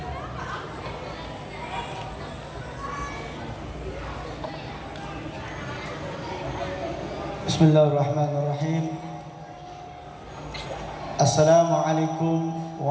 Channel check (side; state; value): both; identical; correlation 1.00